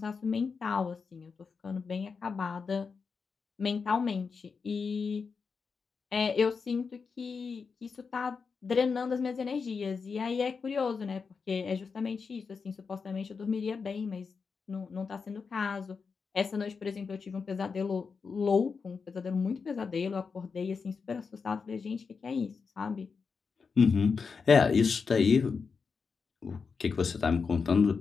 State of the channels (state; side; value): quieter; right; 5.3 dB